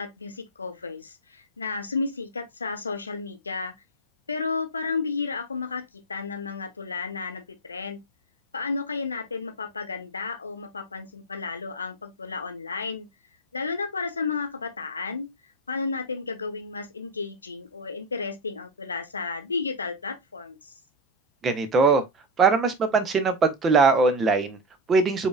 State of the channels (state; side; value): normal; both; correlation 0.11